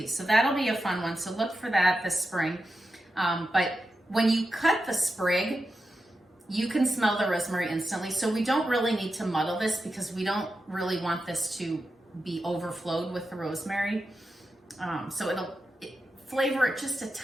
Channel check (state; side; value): normal; both; correlation 0.90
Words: So that'll be a fun one. So look for that this spring. But when you cut the sprig, you can smell the rosemary instantly. So we don't really need to muddle this because we don't really want this to be overflowed with the rosemary. So it'll flavor it just a